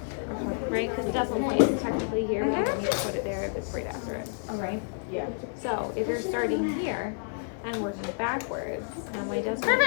right, because the decimal point is technically here. Mhm. You need to put it there if it's right after it. All right. So if you're starting here and working backwards, now my decimal point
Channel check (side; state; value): right; silent; 58 dB below the other